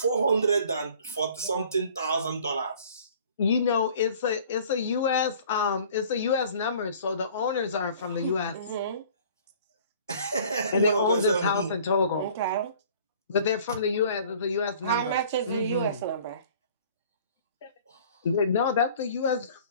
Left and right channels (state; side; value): inverted; both; correlation -0.50